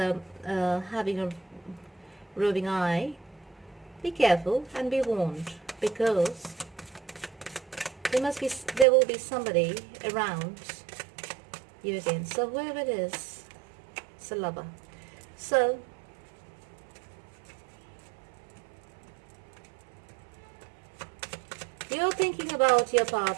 a roving eye, be careful and be warned, because there will be somebody around you again. So whoever it is, it's a lover. So you're thinking about your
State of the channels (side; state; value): left; drops out; at 8.8 s